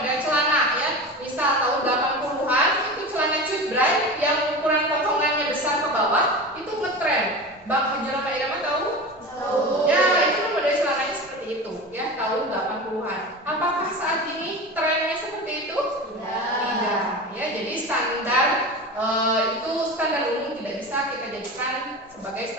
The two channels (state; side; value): normal; both; correlation 0.29